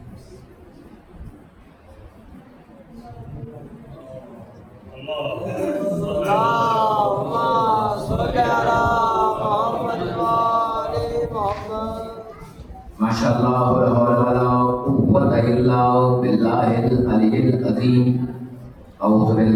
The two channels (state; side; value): identical; both; correlation 1.00